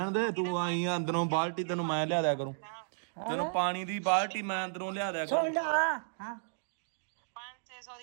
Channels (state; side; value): silent; left; digital silence